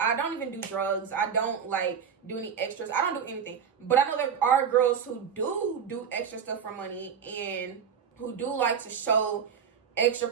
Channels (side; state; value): left; quieter; 7.3 dB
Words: don't even do drugs. I don't like do any extras. I don't do anything. But I know there are girls who do extra stuff for money, and who do like to show extra